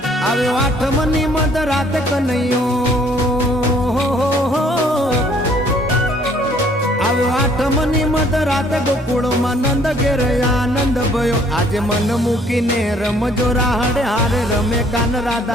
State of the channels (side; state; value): both; normal; correlation 0.61